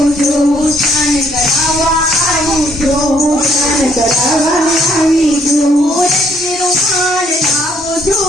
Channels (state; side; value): normal; both; correlation 0.67